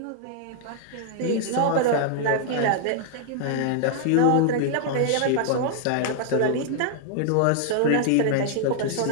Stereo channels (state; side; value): different; both; correlation -0.01